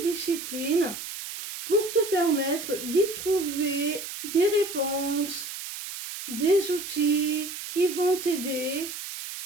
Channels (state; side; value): noise; right; hiss, 9 dB below the sound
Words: pour te permettre d'y trouver des réponses, des outils qui vont t'aider